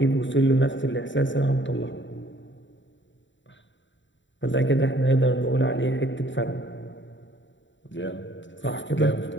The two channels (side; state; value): right; late; 0.54 ms